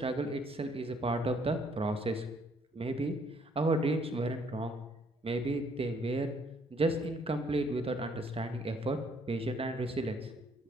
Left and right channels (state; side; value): normal; both; correlation 0.66